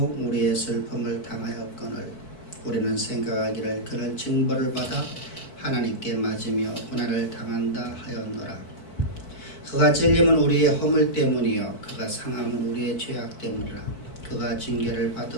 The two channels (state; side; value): late; right; 4.5 ms